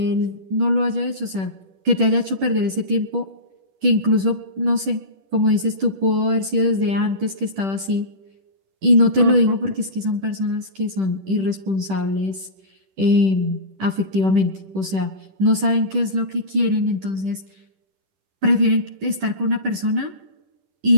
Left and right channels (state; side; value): late; left; 10 ms